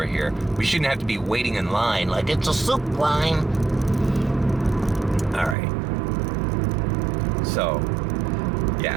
here. We shouldn't have to be waiting in line like it's a soup line. All right. So,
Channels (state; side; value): drops out; left; at 5.6 s